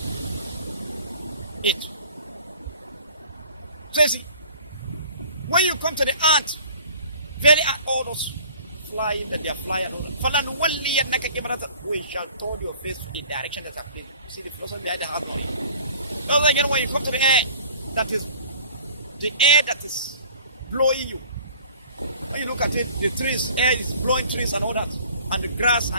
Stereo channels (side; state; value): both; inverted; correlation -0.50